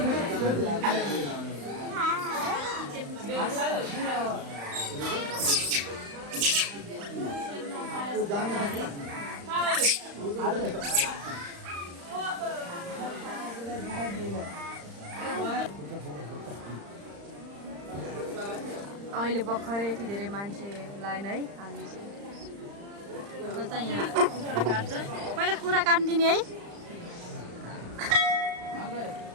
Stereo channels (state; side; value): late; left; 35 ms